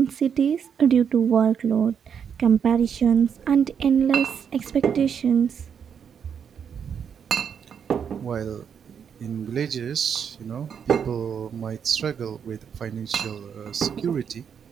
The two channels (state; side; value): quieter; left; 7.5 dB